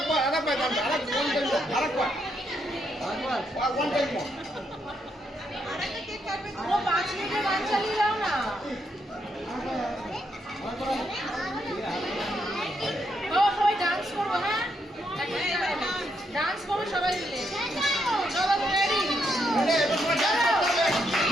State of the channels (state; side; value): normal; both; correlation 0.78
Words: গানটা, আরেকবার। One time more. ও 5 মিনিটের গান চালিয়ে দাও না। ও সবাই ডান্স করবো, হ্যাঁ ডান্স করবো সবাই মিলে। চলো রেডি, এবার ডান্স করতে